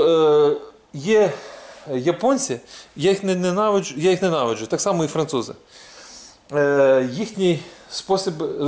є японці, я їх ненавиджу, так само і французи. Їхній спосіб,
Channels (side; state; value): both; identical; correlation 1.00